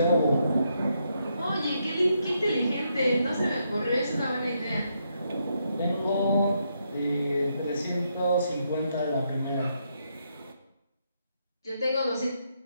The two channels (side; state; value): both; inverted; correlation -0.78